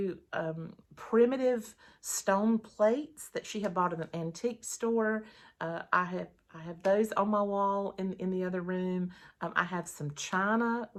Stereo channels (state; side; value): identical; both; correlation 1.00